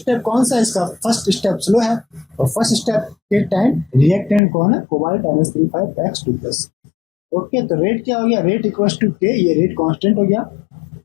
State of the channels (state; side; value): drops out; right; at 4.4 s